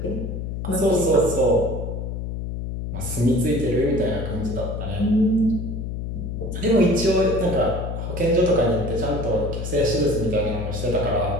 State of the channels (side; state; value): left; noise; hum, 5 dB below the sound